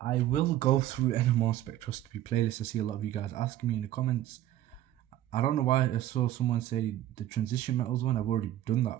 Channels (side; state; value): left; quieter; 13.3 dB